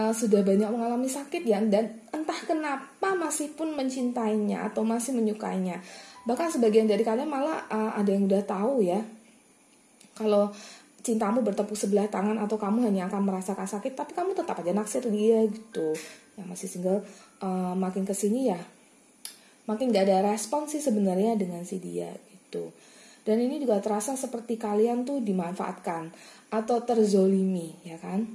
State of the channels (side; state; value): both; identical; correlation 1.00